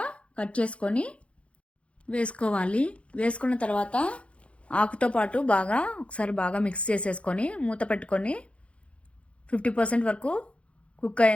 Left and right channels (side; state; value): right; late; 0.061 ms